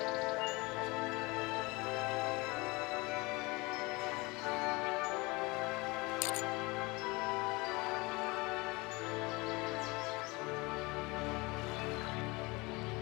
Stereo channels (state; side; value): quieter; right; 24.8 dB